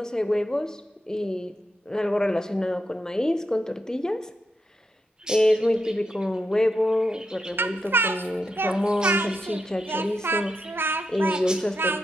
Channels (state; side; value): normal; both; correlation 0.86